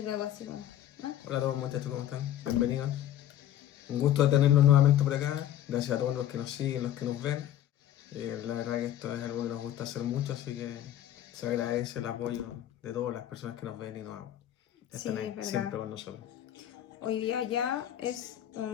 luego así como, ¿no? Hola a todos muchachos, ¿cómo están? Bienvenidos. Un gusto de tenerlos nuevamente por acá. Gracias a todos los que nos siguen, los que nos ven. La verdad que esto es algo que nos gusta hacer mucho, así que se agradece el apoyo de todas las personas que nos ven y nos Sí, están ahí es verdad. siempre con nosotros. Hoy día ya es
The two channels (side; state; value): right; quieter; 11.6 dB